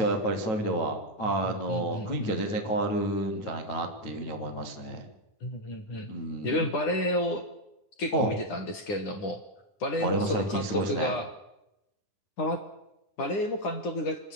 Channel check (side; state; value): right; late; 9.9 ms